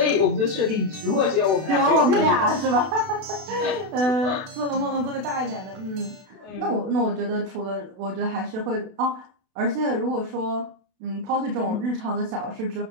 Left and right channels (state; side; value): late; left; 32 ms